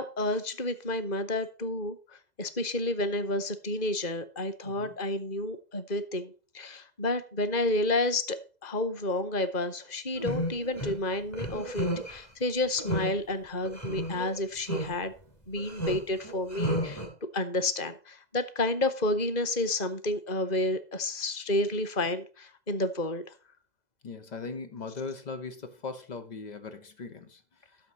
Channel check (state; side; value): late; right; 2.0 ms